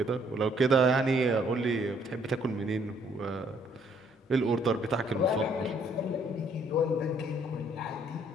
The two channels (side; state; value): both; normal; correlation 0.65